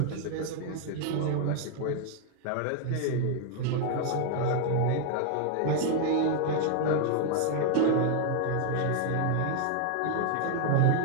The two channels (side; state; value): both; different; correlation 0.00